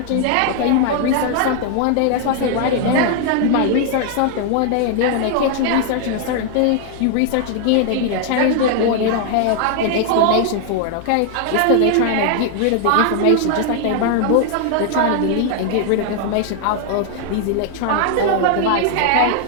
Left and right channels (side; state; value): both; different; correlation 0.00